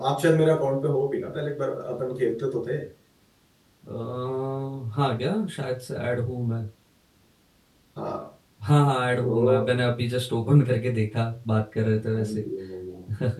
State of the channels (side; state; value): both; identical; correlation 1.00